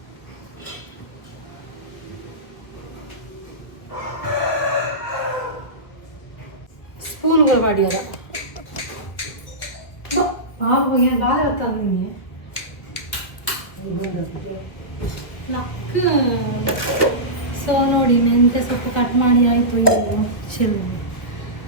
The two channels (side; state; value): right; late; 1.3 ms